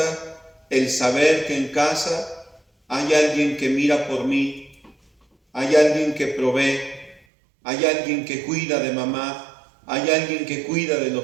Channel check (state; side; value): drops out; left; at 7.2 s